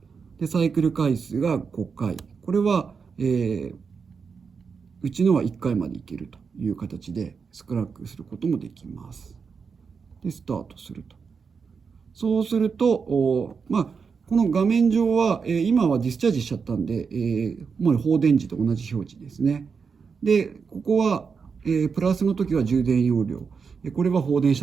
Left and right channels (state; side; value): quieter; left; 5.6 dB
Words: でサイクル回数が5回。これは、うちのは1回までいけるという形でスクラックすることもできます。で、スタートすると。そうすると、この画面上は、今はディスチャージしちゃったんで、もう放電時と同じ表示ですね。で、ここは、プラスの時は充電容量。これは放電し